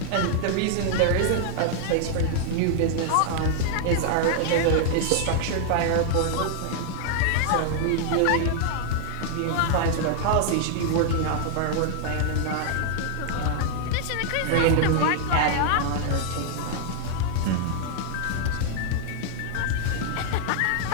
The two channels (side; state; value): both; different; correlation -0.01